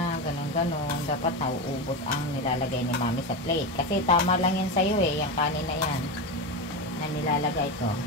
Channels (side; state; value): both; normal; correlation 0.17